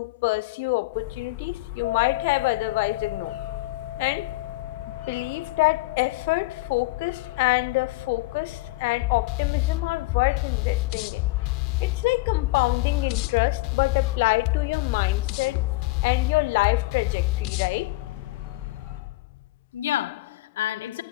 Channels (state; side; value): quieter; right; 20.3 dB